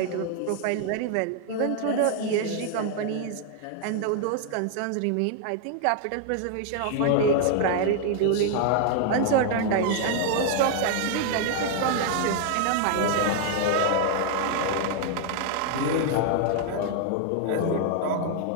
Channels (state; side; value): different; both; correlation 0.00